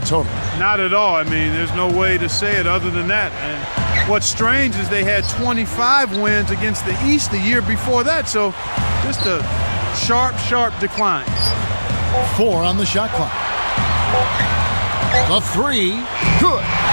total. Not at all. I mean, there's no way to say it other than that. And what's strange is they had 25 wins against the East the year before that. So just a sharp decline. 4 on the shot clock. The 3, good.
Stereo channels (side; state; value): both; inverted; correlation -1.00